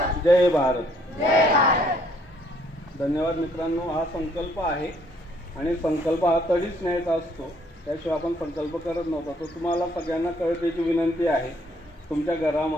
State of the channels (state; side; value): normal; both; correlation 0.65